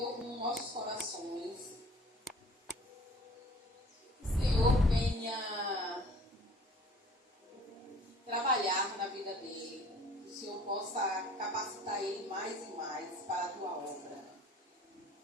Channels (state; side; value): normal; both; correlation 0.50